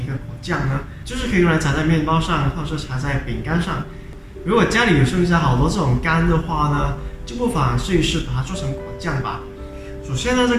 一个果酱呢？就是可以用来撒在面包上，或者是撒在饼干上。如果家里有剩下好多这种干的话呢，就不妨试一试把它做成果酱吧。首先呢，这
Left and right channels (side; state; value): both; identical; correlation 1.00